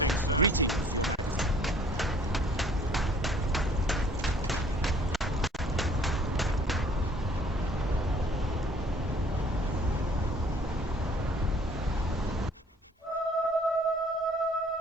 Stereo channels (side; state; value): both; normal; correlation 0.56